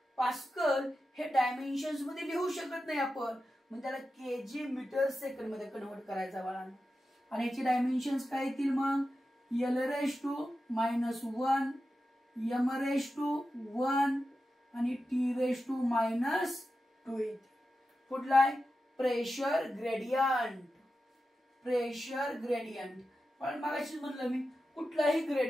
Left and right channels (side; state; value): both; normal; correlation 0.91